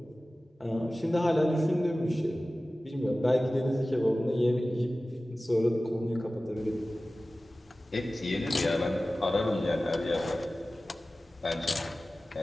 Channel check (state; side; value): normal; both; correlation 0.96